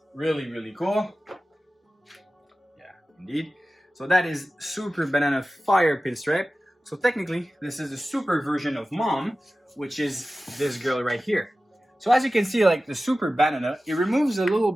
really, really cool. Yeah, indeed. So that is super banana fire pinstripe. So technically, this is a super version of mom, which is this girl right here. So as you can see, like the super banana, it removes a little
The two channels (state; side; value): normal; both; correlation 0.95